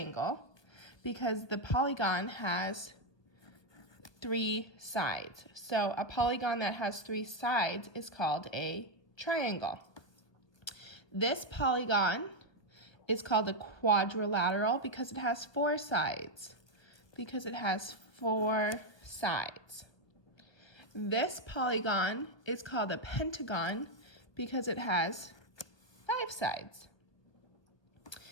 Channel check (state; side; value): late; right; 1.1 ms